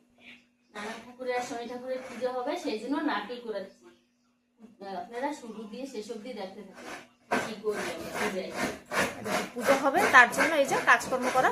নানা ঠাকুরের আর শনি ঠাকুরের পূজা হবে, সেই জন্য নারকেল করেছি। আপনারা শুরু দিয়ে শেষ অব্দি দেখতে থাকুন কি করবেন। পূজা হবে তার জন্য এই যে কাজকর্ম করা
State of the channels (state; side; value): identical; both; correlation 1.00